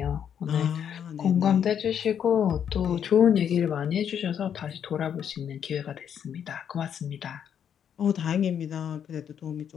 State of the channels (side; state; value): right; quieter; 8.6 dB